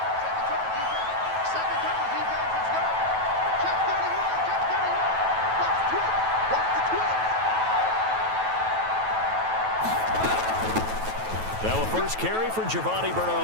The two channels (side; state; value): left; late; 9.2 ms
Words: Now a first carry for Giovanni